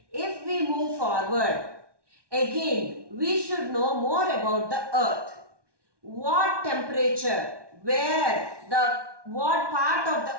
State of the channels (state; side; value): late; left; 1.2 ms